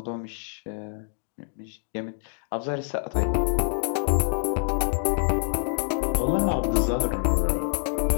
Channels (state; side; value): silent; right; digital silence